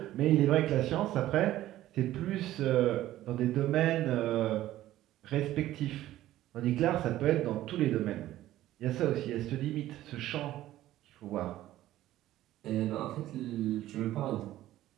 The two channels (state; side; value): quieter; left; 14.4 dB